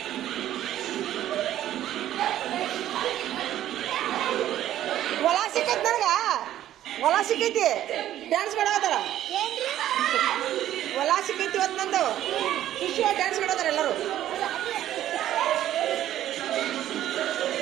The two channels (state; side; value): quieter; left; 12.5 dB